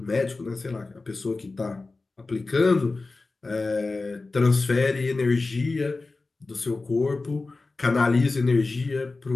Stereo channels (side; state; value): right; quieter; 3.6 dB